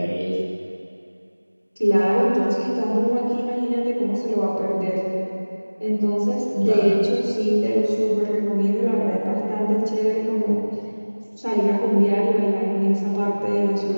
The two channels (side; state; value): both; inverted; correlation -1.00